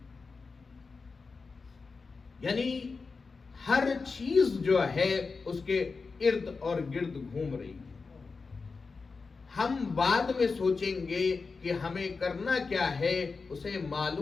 یعنی ہر چیز جو ہے اس کے ارد اور گرد گھوم رہی ہے. ہم بعد میں سوچیں گے کہ ہمیں کرنا کیا ہے، اسے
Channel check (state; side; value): quieter; right; 4.5 dB